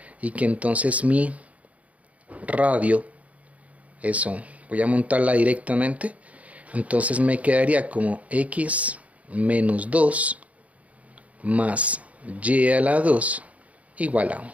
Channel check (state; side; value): late; left; 0.068 ms